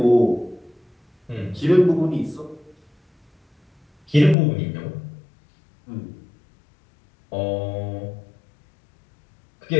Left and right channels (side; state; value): right; drops out; at 4.4 s